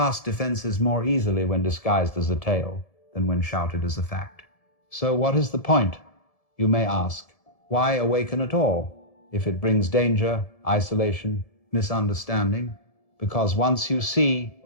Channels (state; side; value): late; right; 1.7 ms